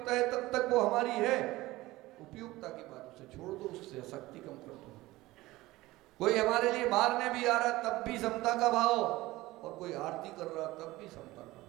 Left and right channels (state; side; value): quieter; left; 18.5 dB